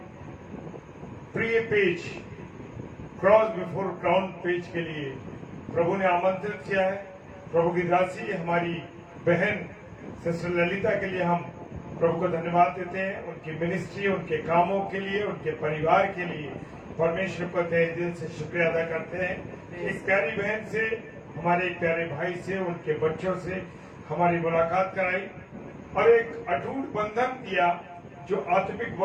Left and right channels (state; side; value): identical; both; correlation 1.00